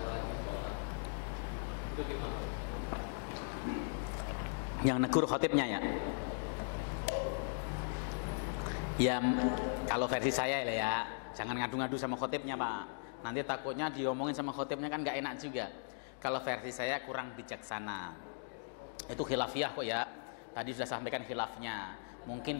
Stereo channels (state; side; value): silent; right; digital silence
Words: Yang negur khotibnya ya. Ya kalau versi saya ya, jangan ngadu-ngadu sama khotibnya Pak. Nanti takutnya diomongin sama khotibnya kan nggak enak juga. Kalau versi saya kurang bijaksana. Itu khilafiyah kok ya. Tadi sudah sampaikan khilafnya.